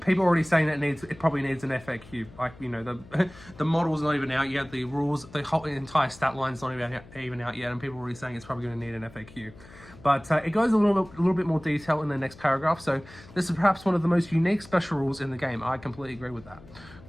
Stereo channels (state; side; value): noise; left; hum, 21 dB below the sound